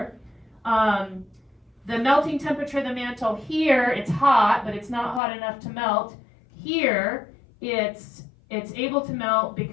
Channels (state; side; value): drops out; right; at 5.2 s